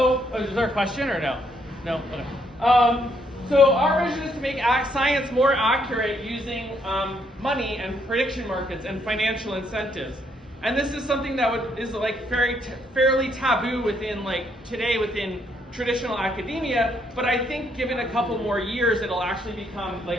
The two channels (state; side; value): normal; both; correlation 0.72